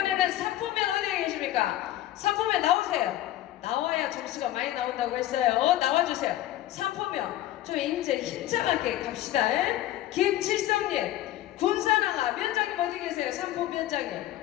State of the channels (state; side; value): quieter; right; 14.2 dB